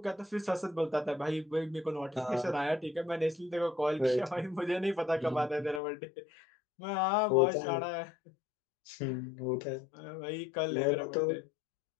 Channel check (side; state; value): right; drops out; at 5.8 s